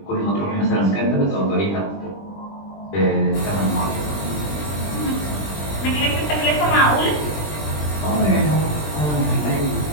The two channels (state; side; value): late; right; 20 ms